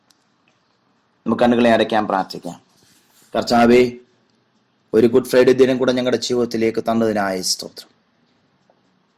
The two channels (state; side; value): identical; both; correlation 1.00